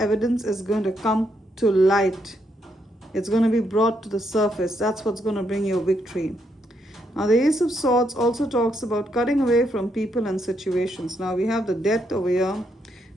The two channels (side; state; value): both; normal; correlation 0.77